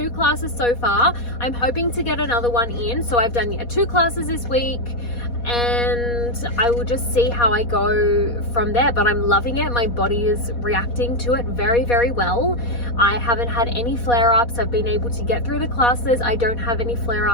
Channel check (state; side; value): late; right; 4.2 ms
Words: classes so far. I'm hoping to get another one in. So I've done 2 classes this week, and I will just see how I go from there. But I'm loving it. My body is reacting to it very, very well. I haven't had any flare-ups. I've been able to get through the classes. I don't have any